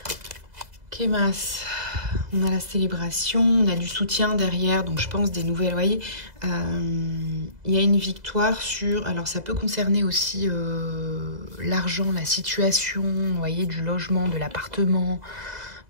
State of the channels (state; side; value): late; left; 2.0 ms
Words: Kémas, on a la célébration, on a du soutien derrière, donc je pense des nouvelles, vous voyez. Il y a une victoire sur, alors ça peut concerner aussi l'argent, la situation, vous voyez, du logement, de l'appartement,